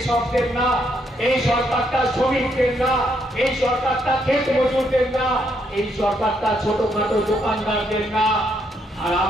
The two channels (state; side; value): normal; both; correlation 0.75